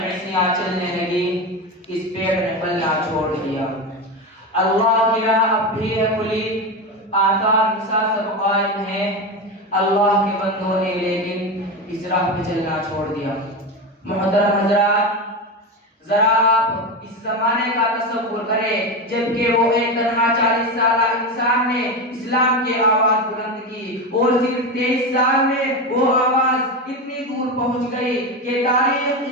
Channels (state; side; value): normal; both; correlation 0.18